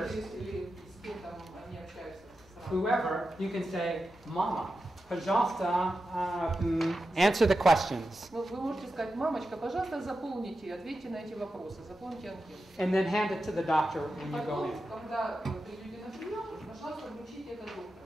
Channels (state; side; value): normal; both; correlation 0.91